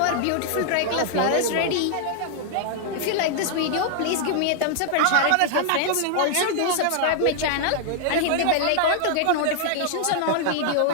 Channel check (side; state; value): both; different; correlation -0.01